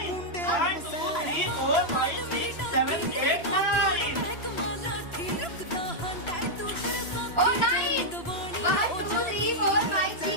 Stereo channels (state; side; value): late; right; 3.0 ms